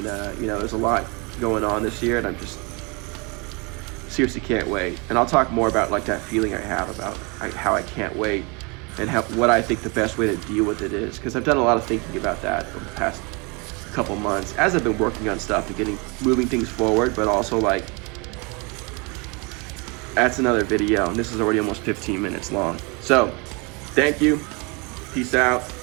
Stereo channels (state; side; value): quieter; left; 30.1 dB